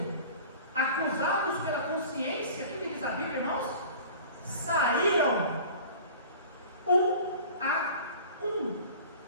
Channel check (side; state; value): both; inverted; correlation -0.42